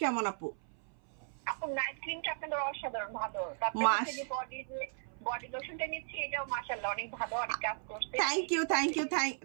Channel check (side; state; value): left; silent; 54 dB below the other